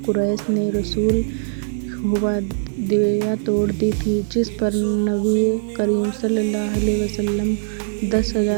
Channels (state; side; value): silent; left; 56 dB below the other